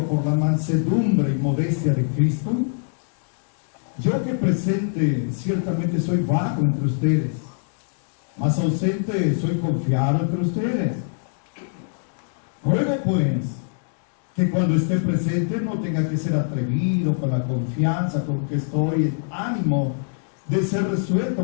por la mansedumbre y modestia de Cristo, yo que presente ciertamente soy vago entre ustedes, mas ausente soy confiado entre ustedes. Ruego pues que cuando esté presente no tenga que ser atrevido con la confianza con que estoy, en ánimo de ser resuelto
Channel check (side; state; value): right; silent; digital silence